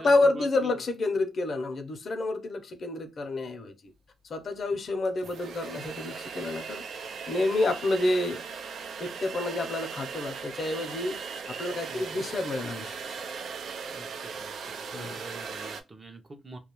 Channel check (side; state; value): both; normal; correlation 0.84